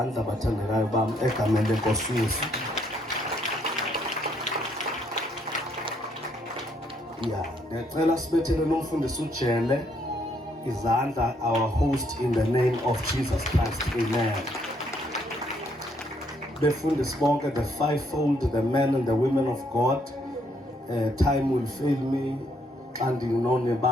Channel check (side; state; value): both; normal; correlation 0.71